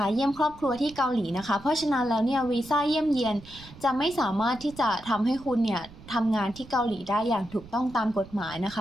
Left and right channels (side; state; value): right; noise; rumble, 19 dB below the sound